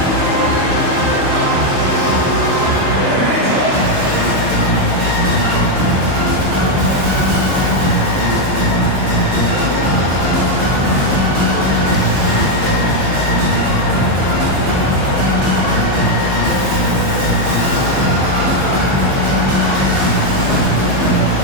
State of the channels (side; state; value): left; late; 15 ms